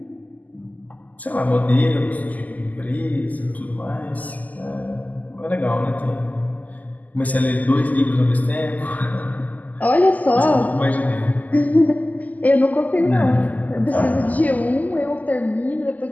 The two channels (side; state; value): right; late; 0.079 ms